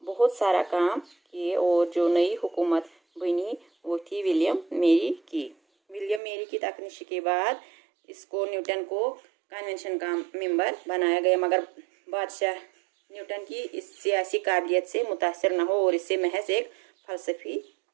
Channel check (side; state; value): left; drops out; at 6.2 s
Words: बहुत सारा काम किए। और जो नई हुकूमत बनी वो थी विलियम मेरी की। विलियम मेरी की तकनीशी के बाद इसको न्यूटन को कन्वेंशन का मेंबर बनाया गया, मगर बादशाह न्यूटन की इस सियासी काबिलियत से मुतासर न हो और इसे महज एक फलसफी